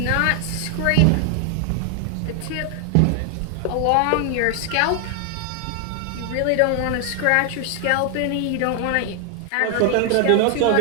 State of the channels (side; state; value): both; different; correlation 0.00